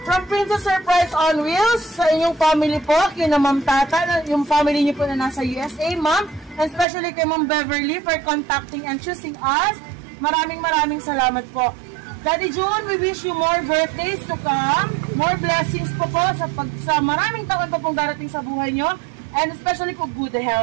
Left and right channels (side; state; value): left; drops out; at 6.9 s